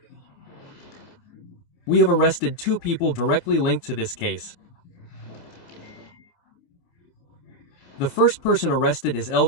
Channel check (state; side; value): late; right; 27 ms